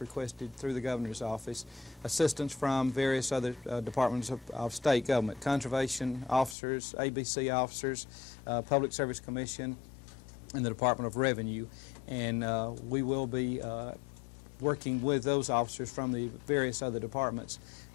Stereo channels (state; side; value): drops out; right; at 6.6 s